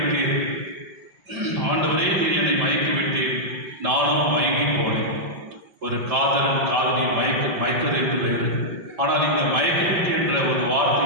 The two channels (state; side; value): late; left; 5.8 ms